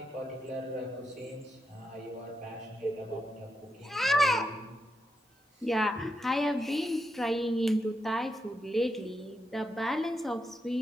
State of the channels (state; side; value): normal; both; correlation 0.84